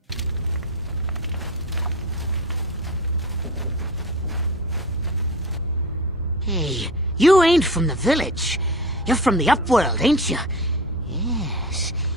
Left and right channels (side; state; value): both; normal; correlation 0.30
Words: You ain't from the village. You're from the Upworld, ain't you? Yes.